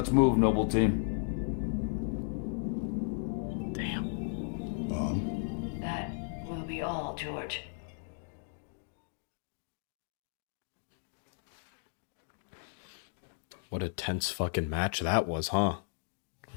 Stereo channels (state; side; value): silent; right; digital silence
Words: move, Noble Team. That will be all, George. What a tense fucking match that was, huh?